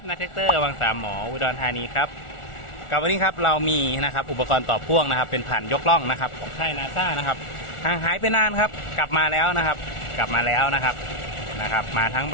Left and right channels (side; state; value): right; late; 1.4 ms